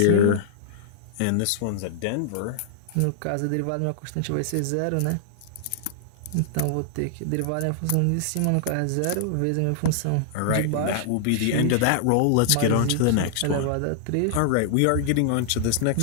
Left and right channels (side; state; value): both; different; correlation -0.01